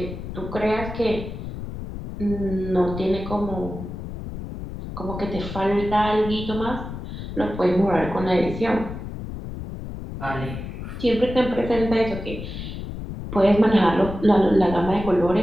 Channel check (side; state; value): left; noise; rumble, 8 dB below the sound